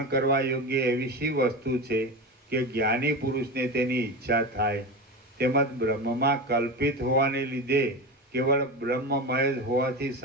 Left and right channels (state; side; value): normal; both; correlation 0.23